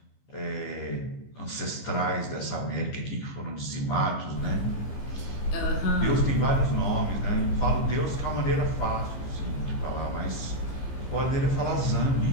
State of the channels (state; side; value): late; right; 15 ms